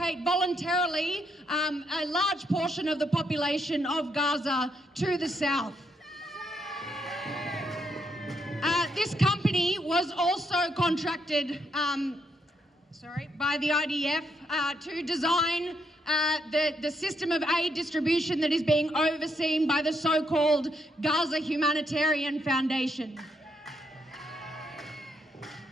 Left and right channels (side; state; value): both; normal; correlation 0.76